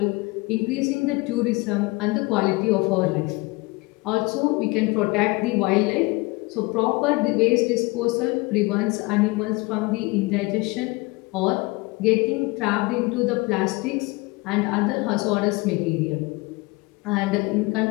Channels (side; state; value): right; quieter; 24.5 dB